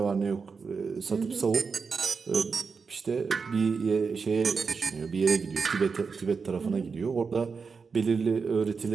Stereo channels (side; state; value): left; quieter; 5.2 dB